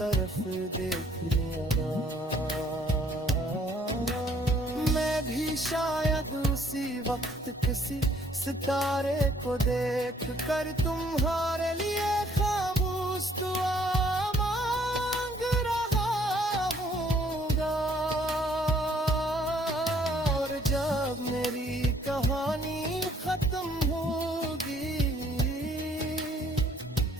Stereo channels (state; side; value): normal; both; correlation 0.63